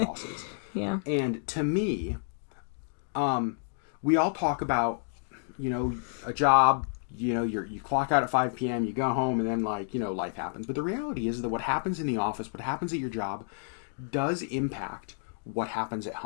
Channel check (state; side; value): silent; right; digital silence